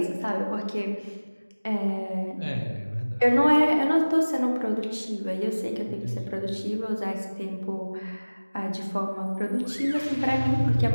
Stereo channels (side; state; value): both; inverted; correlation -1.00